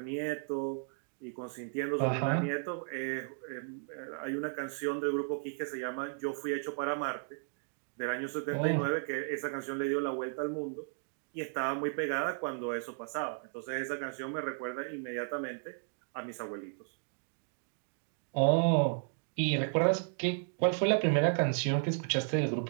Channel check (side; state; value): left; silent; digital silence